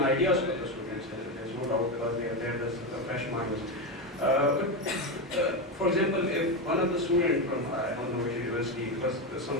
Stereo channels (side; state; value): both; normal; correlation 0.13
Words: from the students. There's no doubt because they are there as fresh minds. For example, if one of the students from I don't know which university, because